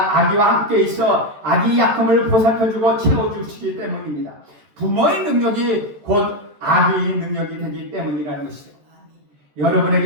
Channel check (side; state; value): left; late; 14 ms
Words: 아기와 함께 있어 아기 약함을 보살펴주고 채워주시기 때문입니다. 부모의 능력이 곧 아기의 능력이 되기 때문이라는 것이죠.